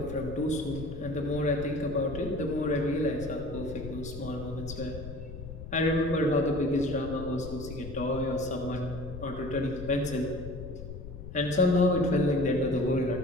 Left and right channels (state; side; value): noise; left; rumble, 10 dB below the sound